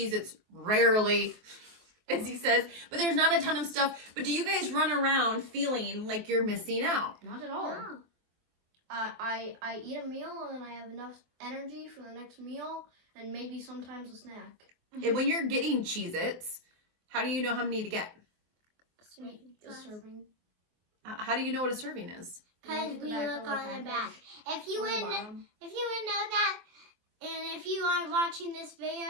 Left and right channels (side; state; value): left; late; 23 ms